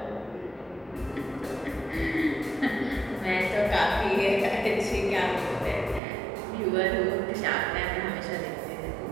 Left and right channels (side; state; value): left; drops out; at 6.0 s